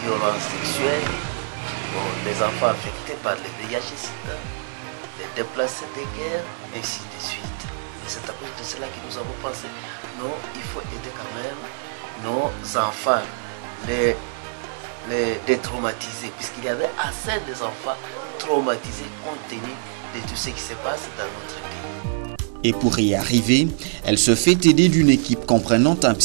violences sexuelles, les enfants affectés par les VIH-Sida, les déplacés de guerre, ainsi de suite. Et c'est à cause de cela que nous avons pensé, non, il faut aider quand même nos enfants, les détraumatiser, puisqu'il y avait assez d'enfants traumatisés compte tenu de tout ce qui se passe dans notre pays. Et pour y arriver, elle se fait aider d'une équipe comprenant un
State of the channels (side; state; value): left; silent; digital silence